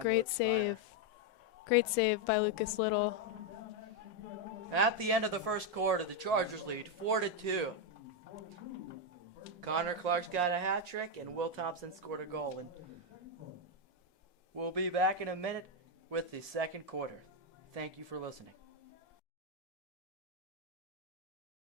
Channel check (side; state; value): both; normal; correlation 0.03